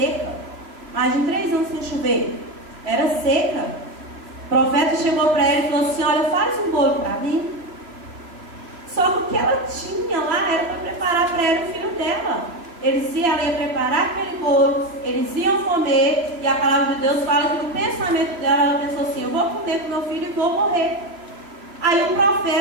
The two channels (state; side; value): late; left; 2.9 ms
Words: Mais de 3 anos sem chover. Era seca. O profeta chegou para ela e falou assim, olha, faz um bolo para mim. Só que o que ela tinha lá era para preparar para ela o filho dela. Ela ia preparar aquele bolo, eles iam comer, e a palavra de Deus fala que no pensamento dela, ela pensou assim, eu vou comer com meu filho e vou morrer. Aí o